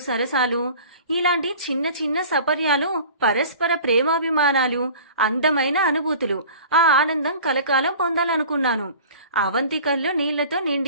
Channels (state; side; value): inverted; both; correlation -0.43